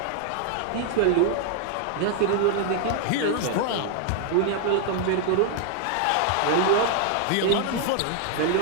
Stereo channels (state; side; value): different; both; correlation 0.00